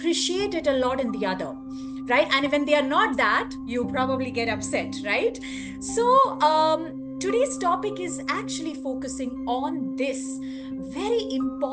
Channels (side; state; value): both; identical; correlation 1.00